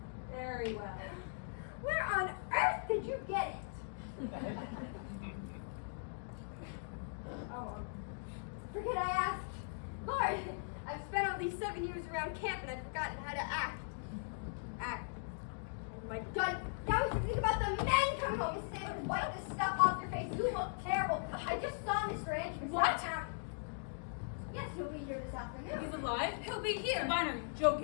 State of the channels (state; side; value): silent; right; digital silence